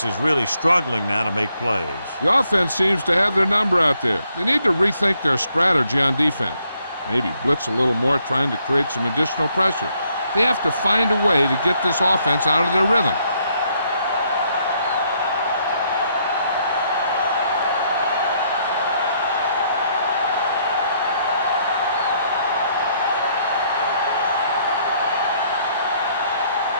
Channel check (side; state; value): both; inverted; correlation -0.71